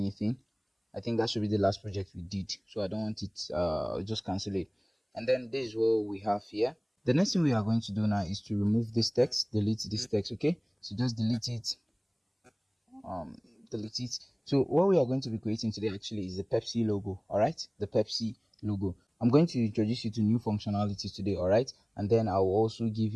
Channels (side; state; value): both; identical; correlation 1.00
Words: I think that should be the last project we did, so I don't want it. Just cancel it. And then this is what we have here. The next thing we are going to do now is to remove this text, delete this text. Okay, so just delete it. Delete it. So what we are going to be creating today actually is the Pepsi logo. All right, the Pepsi logo. I'm going to introduce you to new functionalities today. All right, and then I will also give